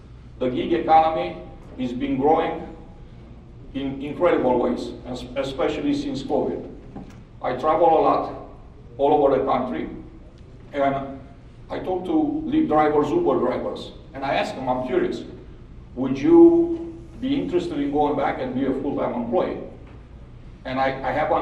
The gig economy has been growing in incredible ways, especially since COVID. I travel a lot all over the country, and I talk to Lyft drivers, Uber drivers, and I ask them, I'm curious, would you be interested in going back and be a full-time employee? And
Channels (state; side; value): identical; both; correlation 1.00